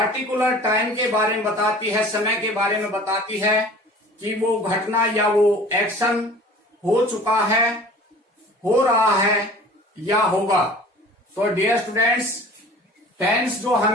टाइम के बारे में बताती है, समय के बारे में बताती है कि वो घटना या वो एक्शन हो चुका है, हो रहा है या होगा। तो डियर स्टूडेंट्स, टेंस जो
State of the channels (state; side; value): normal; both; correlation 0.44